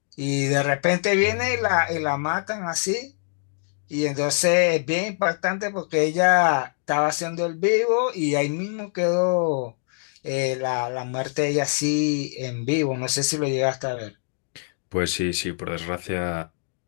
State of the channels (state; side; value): silent; right; 62 dB below the other